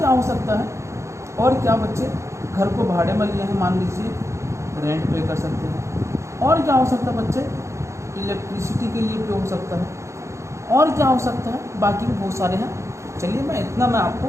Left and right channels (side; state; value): left; late; 0.14 ms